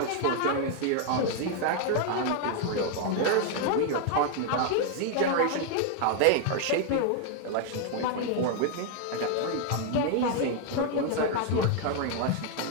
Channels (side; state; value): both; different; correlation 0.00